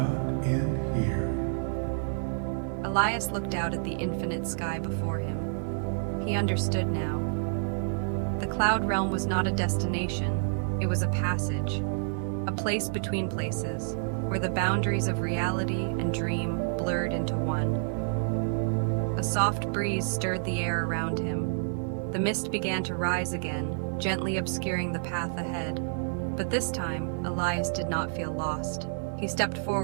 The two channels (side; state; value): left; silent; digital silence